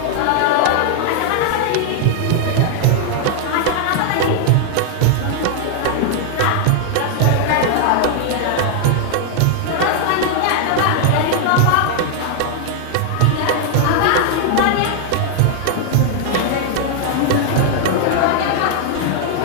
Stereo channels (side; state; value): both; different; correlation 0.00